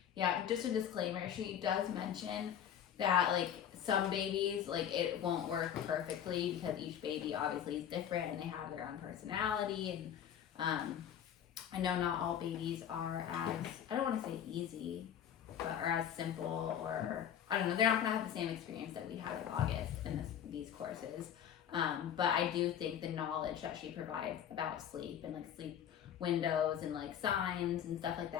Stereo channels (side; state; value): right; quieter; 9.4 dB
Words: Yeah, just a disclaimer, she does mention that like some babies, like it won't work perfectly because each baby obviously is different and they have their own personality. And I know not all babies are as, I don't want to say easy, but or as simple, or I don't know, they're not gonna have the same experience that we had with August in these courses. But I do think the knowledge that she provides about sleep and like sleep windows and like signs and stuff like